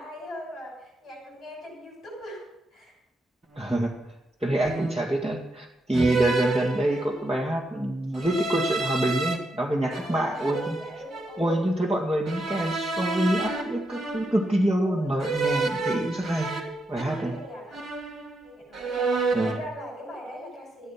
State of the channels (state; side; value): normal; both; correlation 0.82